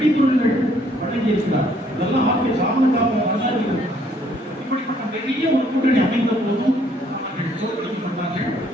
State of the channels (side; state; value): both; normal; correlation 0.65